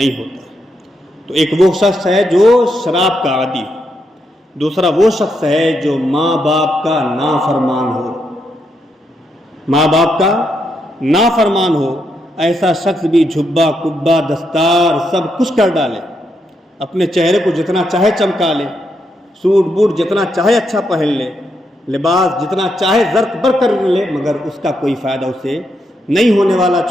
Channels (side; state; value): both; normal; correlation 0.80